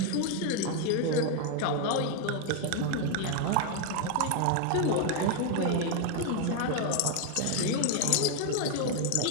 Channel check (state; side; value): different; both; correlation 0.00